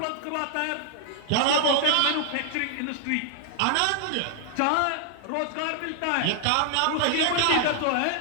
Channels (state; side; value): different; both; correlation 0.00